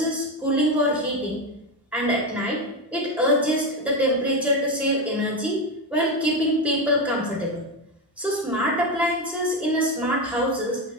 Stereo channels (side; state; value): both; normal; correlation 0.13